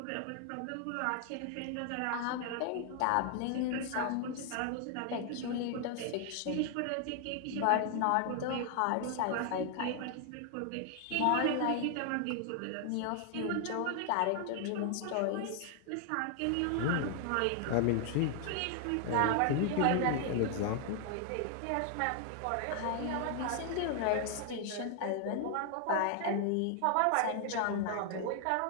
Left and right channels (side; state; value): both; different; correlation 0.00